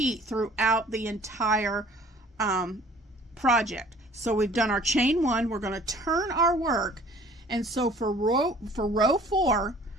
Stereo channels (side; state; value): both; normal; correlation 0.51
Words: throughout the entire project. So we've done our chain 1, we're going to turn our work, and so for row 4,